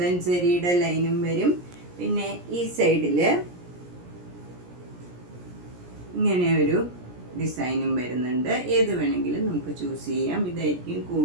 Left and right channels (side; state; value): left; late; 17 ms